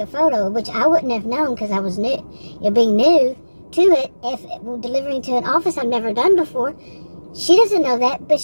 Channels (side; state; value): both; inverted; correlation -1.00